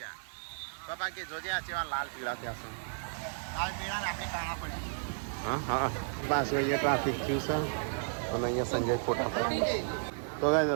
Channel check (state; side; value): silent; left; 56 dB below the other